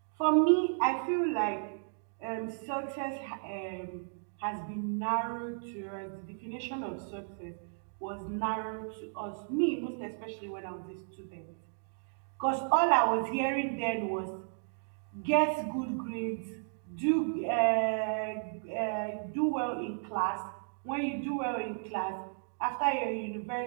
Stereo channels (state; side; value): silent; left; digital silence